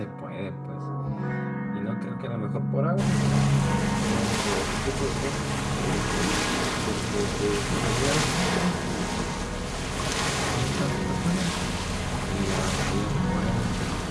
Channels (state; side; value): identical; both; correlation 1.00